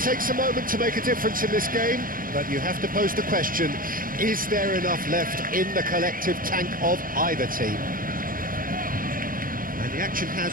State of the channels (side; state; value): left; late; 0.41 ms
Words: a moment to make a difference in this game, but you have to pose the question, is there enough left in the collective tank of either team? And the action